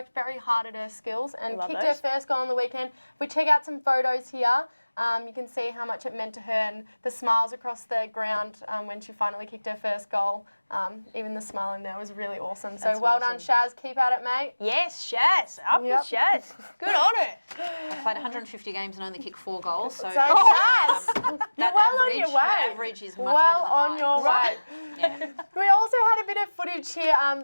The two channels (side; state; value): both; inverted; correlation -1.00